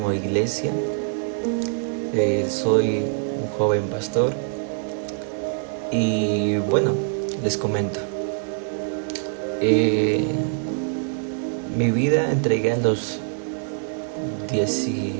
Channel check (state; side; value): silent; left; digital silence